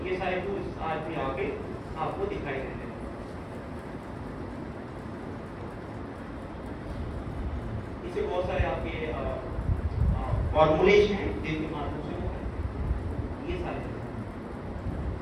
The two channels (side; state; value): both; identical; correlation 1.00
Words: ये सारे टूल्स आज भी आगे आपको दिखाई देते हैं। इससे बहुत सारे आपके फॉर्मूलेज हैं जिनके माध्यम से वो ये सारे,